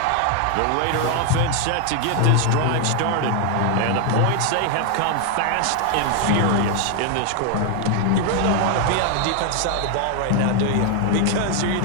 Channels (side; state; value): both; different; correlation 0.00